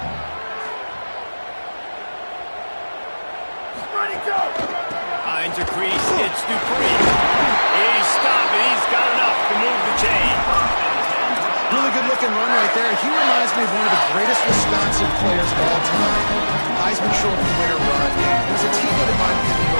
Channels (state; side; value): inverted; both; correlation -1.00